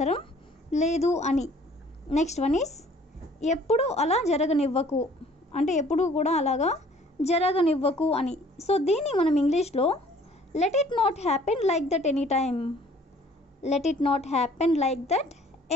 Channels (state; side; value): normal; both; correlation 0.55